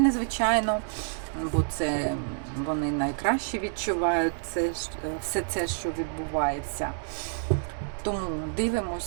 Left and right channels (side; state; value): left; silent; digital silence